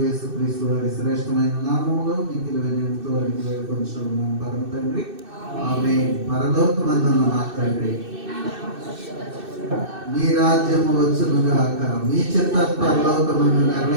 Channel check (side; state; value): left; late; 2.6 ms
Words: యేసుక్రీస్తు వారి శ్రేష్టమైన నామములో మిక్కిలి వినయంతో అడిగి వేడుకొంచున్నాం పరమ తండ్రి, ఆమేన్. పరలోకమందున్న మా తండ్రి, మీ రాజ్యము వచ్చును గాక, మీ చిత్త పరలోకమందు